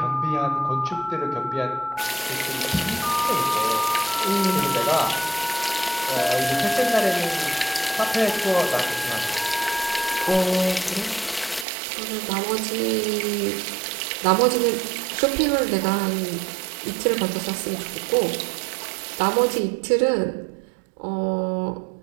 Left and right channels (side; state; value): left; drops out; at 11.7 s